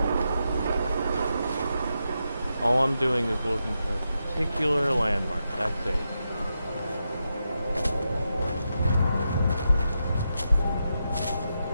All I'm doing is looking for a particular landmark. That's it.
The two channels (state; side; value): inverted; both; correlation -0.86